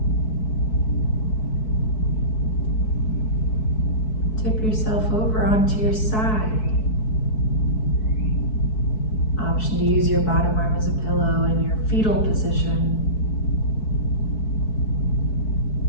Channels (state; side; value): late; right; 4.6 ms